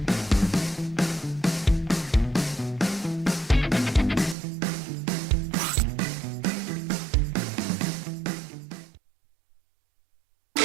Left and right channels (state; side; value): drops out; left; at 4.4 s